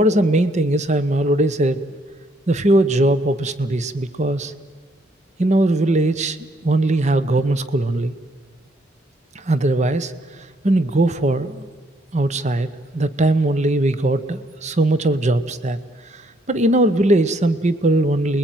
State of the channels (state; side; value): normal; both; correlation 0.69